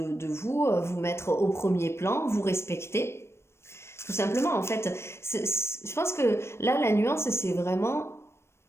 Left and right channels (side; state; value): right; late; 0.13 ms